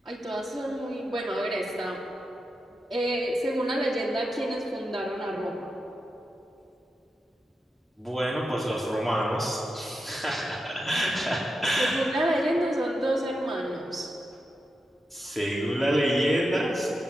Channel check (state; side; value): normal; both; correlation 0.88